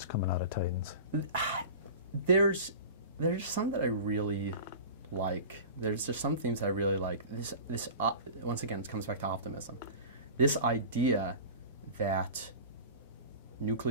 coming out of Titans? There's some that I really like. There's just some themes I really like. This once again, it comes back to optimism. This idea that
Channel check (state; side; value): inverted; both; correlation -0.35